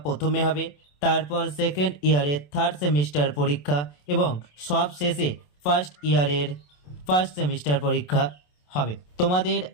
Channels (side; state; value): right; late; 27 ms